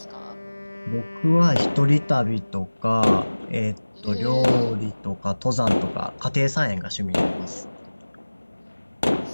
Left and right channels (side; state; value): both; inverted; correlation -1.00